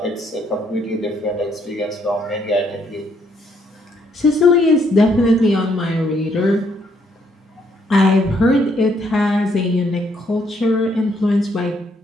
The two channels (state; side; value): normal; both; correlation 0.71